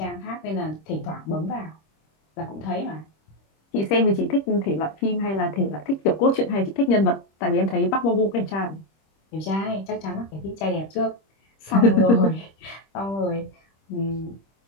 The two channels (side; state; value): right; late; 26 ms